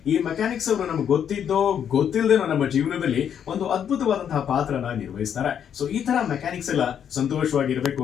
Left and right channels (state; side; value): quieter; right; 8.7 dB